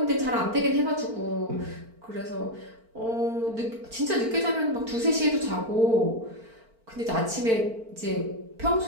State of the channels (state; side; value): late; left; 4.4 ms